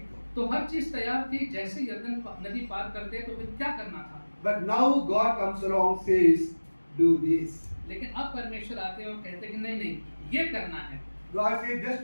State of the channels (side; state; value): both; inverted; correlation -1.00